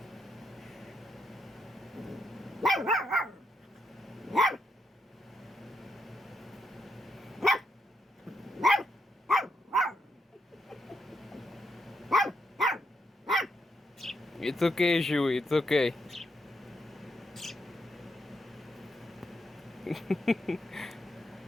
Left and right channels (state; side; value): normal; both; correlation 0.81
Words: It's okay, Shu, it's okay.